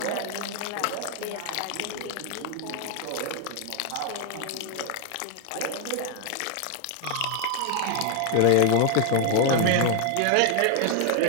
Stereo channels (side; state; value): both; different; correlation 0.00